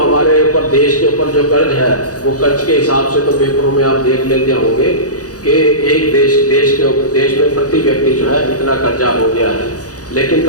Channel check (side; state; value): right; late; 0.67 ms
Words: ऊपर देश के ऊपर जो कर्ज है वो कर्ज के हिसाब से तो पेपरों में आप देख लेते होंगे कि एक देश में प्रति व्यक्ति जो है इतना कर्जा हो गया है। लेकिन